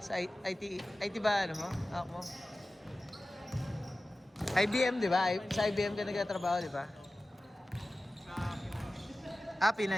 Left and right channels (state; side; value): normal; both; correlation 0.96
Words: Sa IT ba ano mo? Ako. IBM, di ba? Sa IBM ka nagtatrabaho, di ba?